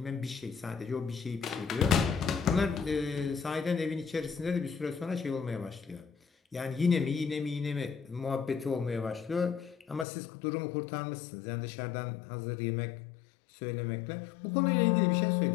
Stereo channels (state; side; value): drops out; right; at 10.1 s